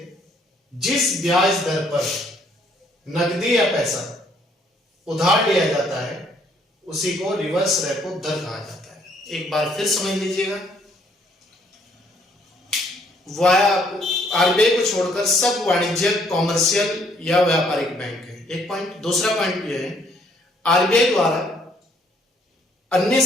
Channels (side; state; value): both; normal; correlation 0.66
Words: जिस ब्याज दर पर नकदी या पैसा उधार लिया जाता है, उसी को रिवर्स रेपो दर कहा जाता है। एक बार फिर समझ लीजिएगा, आरबीआई को छोड़कर सब वाणिज्यिक, कॉमर्शियल या व्यापारिक बैंक है, एक पॉइंट। दूसरा पॉइंट यह है, आरबीआई द्वारा अन्य